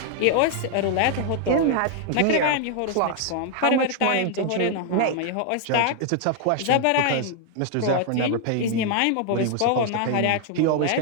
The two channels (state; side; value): different; both; correlation 0.00